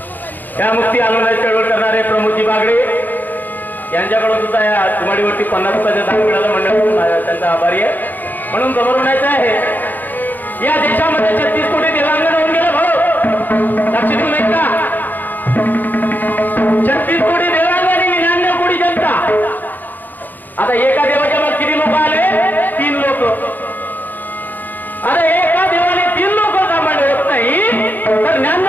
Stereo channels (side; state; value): right; late; 0.088 ms